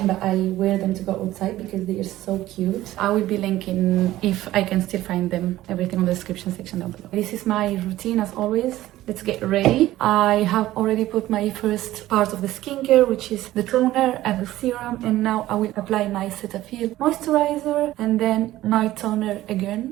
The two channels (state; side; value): quieter; left; 15.3 dB